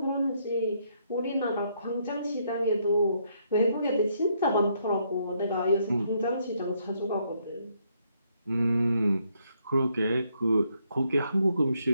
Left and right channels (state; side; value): inverted; both; correlation -0.73